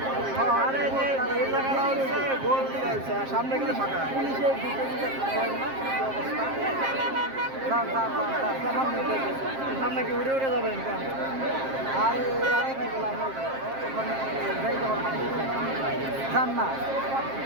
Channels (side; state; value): left; late; 7.5 ms